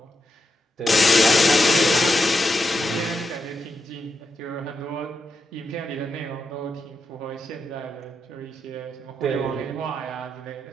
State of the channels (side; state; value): both; normal; correlation 0.85